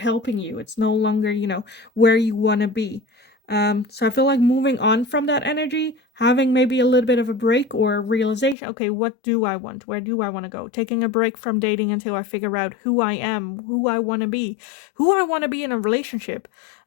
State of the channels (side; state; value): right; drops out; at 8.6 s